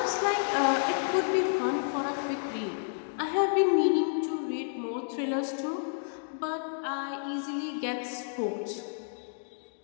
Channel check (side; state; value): right; silent; digital silence